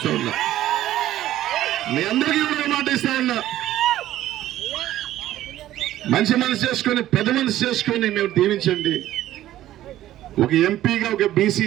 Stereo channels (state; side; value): quieter; left; 13.7 dB